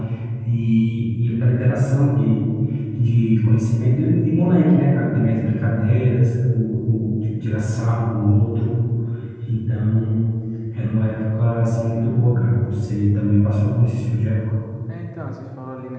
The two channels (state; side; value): identical; both; correlation 1.00